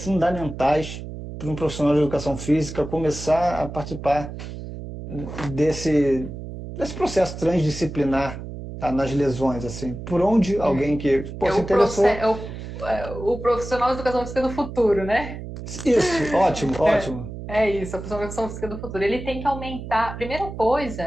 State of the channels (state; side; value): noise; right; hum, 10 dB below the sound